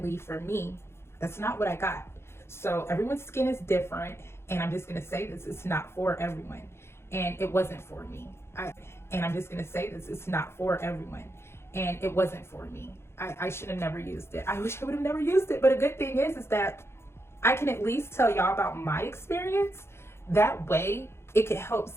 for me, that's not what I got. So everyone's skin is different, And I'm just going to say this, it's not for everyone. And it wasn't for me. And I'm just going to say this, it's not for everyone. And it wasn't for me. I should have never used it. I wish I would have never used it. But a good thing is that I can at least tell y'all about my experience. That way it could help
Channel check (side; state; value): right; late; 0.12 ms